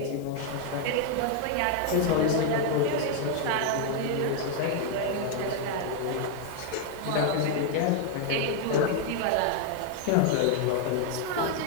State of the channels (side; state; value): both; different; correlation 0.00